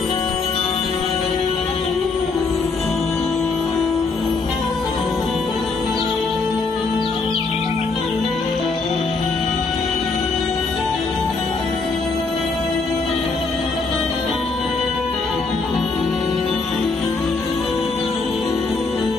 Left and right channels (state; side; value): quieter; right; 4.1 dB